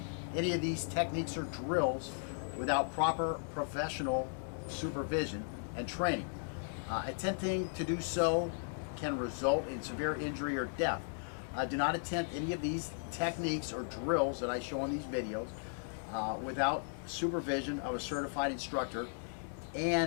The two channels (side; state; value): right; silent; digital silence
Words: any of these techniques or drills without proper professional supervision and training. Attempting to do so can result in severe injury or death. Do not attempt any of these techniques or drills that I show on these videos without supervision of a certified instructor